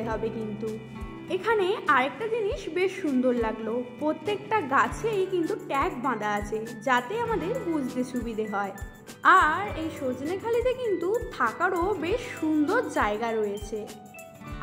হবে। কিন্তু এখানে আরেকটা জিনিস বেশ সুন্দর লাগলো, প্রত্যেকটা গাছেই কিন্তু ট্যাগ বাঁধা আছে যাতে আমাদের বুঝতে সুবিধে হয়। আর এই সজনেখালিতে কিন্তু থাকারও বেশ সুন্দর জায়গা রয়েছে।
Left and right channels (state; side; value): identical; both; correlation 1.00